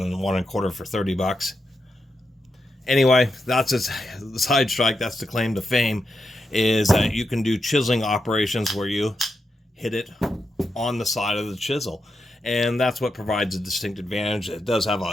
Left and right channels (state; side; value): normal; both; correlation 0.86